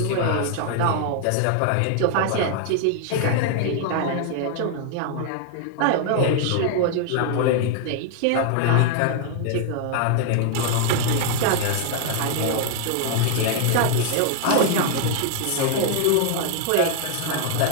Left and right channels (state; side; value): different; both; correlation 0.00